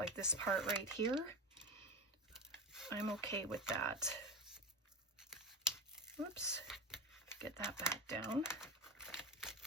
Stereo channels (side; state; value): both; normal; correlation 0.22